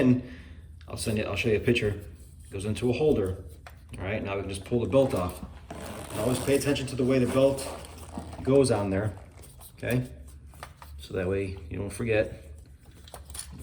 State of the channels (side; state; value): both; identical; correlation 1.00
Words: I'll show you a picture, goes into a holder. All right, now we can just pull the belt off. And always pay attention to the way the belt goes on there, okay? So that way you don't forget.